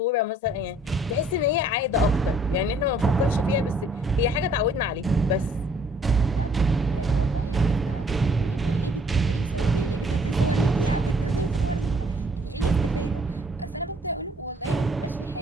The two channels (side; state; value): both; normal; correlation 0.61